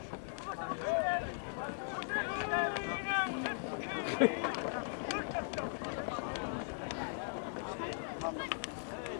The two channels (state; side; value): silent; right; digital silence